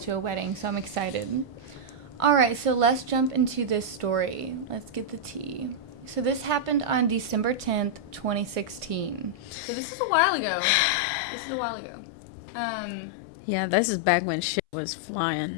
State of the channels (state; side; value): drops out; right; at 9.6 s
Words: to a wedding, so I'm excited. All right, so let's jump into this story. Let's get the tea. So this happened on December 10th, 2016. So this is a while ago. Yeah, this is back when shit was flying.